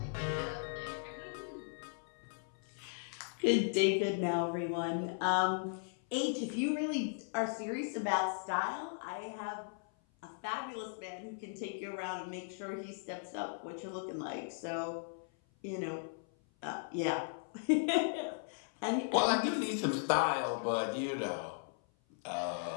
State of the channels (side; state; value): right; silent; 53 dB below the other